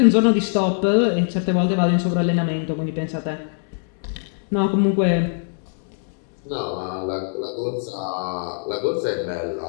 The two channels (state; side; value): silent; right; digital silence